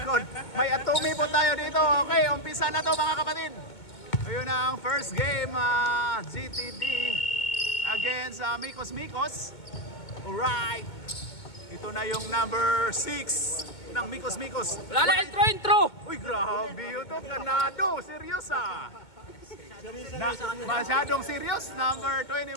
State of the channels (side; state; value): right; late; 2.2 ms